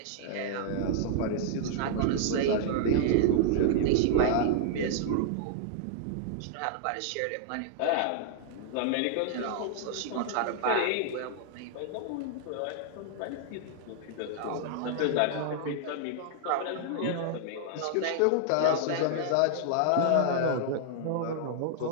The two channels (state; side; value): different; both; correlation -0.01